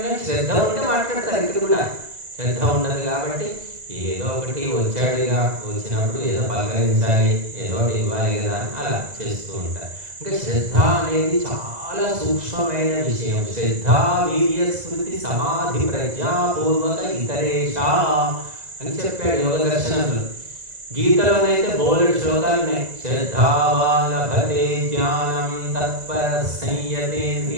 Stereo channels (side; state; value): left; late; 2.0 ms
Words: శ్రద్ధ ఉంటే మాట్లాడతారు. ఇక్కడ కూడా శ్రద్ధ ఉండదు కాబట్టి ఏదో ఒకటి వచ్చాడుగా, వచ్చినప్పుడు ఏదో పలకరించాలి, ఏదో ఒకటి ఇవ్వాలి కదా అని అలా చేస్తూ ఉంటారు. ఇంకా శ్రద్ధ అనేది చాలా సూక్ష్మమైన విషయం. శ్రద్ధ వీర్య స్మృతి సమాధి ప్రజ్ఞాపూర్వక ఇతరేషా అని చెప్పాడు యోగ దర్శనంలో. గీతలోనైతే బోలెడు శ్లోకాలు ఉన్నాయి. శ్రద్ధావాన్ లభతే జ్ఞానం తత్పర